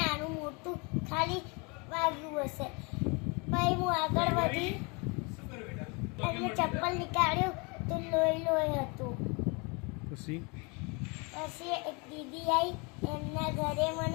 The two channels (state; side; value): quieter; right; 30.6 dB